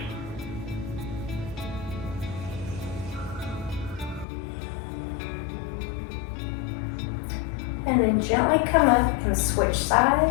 And then gently come up and switch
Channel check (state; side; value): drops out; right; at 4.2 s